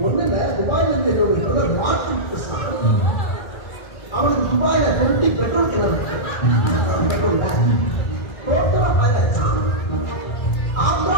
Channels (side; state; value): right; late; 2.3 ms